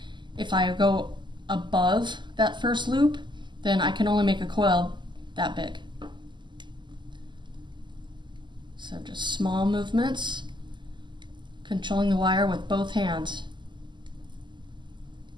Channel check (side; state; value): left; late; 0.22 ms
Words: If I go above that first loop, then I can only make a coil that big. So just small movements, controlling the wire with both hands.